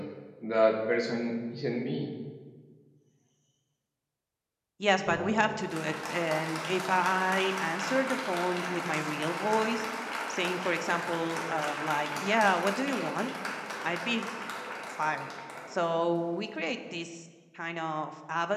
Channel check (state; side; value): identical; both; correlation 1.00